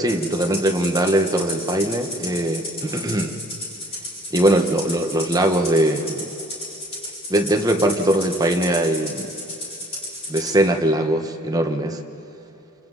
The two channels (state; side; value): normal; both; correlation 0.58